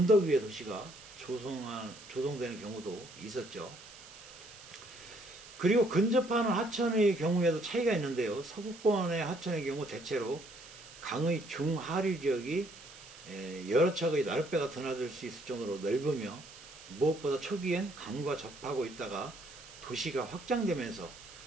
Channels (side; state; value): right; noise; hiss, 18 dB below the sound